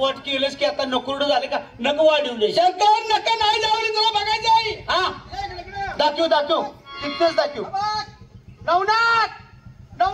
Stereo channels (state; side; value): identical; both; correlation 1.00